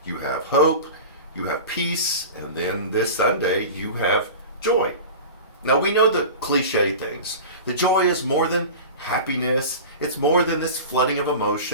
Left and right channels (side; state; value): both; inverted; correlation -0.33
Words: You have hope, you have peace, and then this Sunday, you have joy. Now, we know the cliche things. The joy is more than happiness. It's more than this flooding of